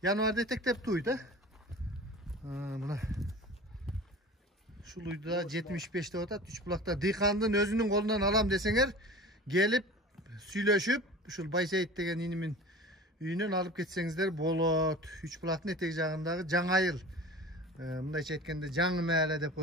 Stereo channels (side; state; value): both; normal; correlation 0.38